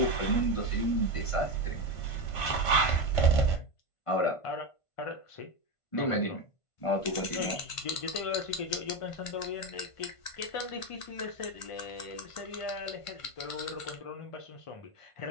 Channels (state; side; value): late; right; 1.5 ms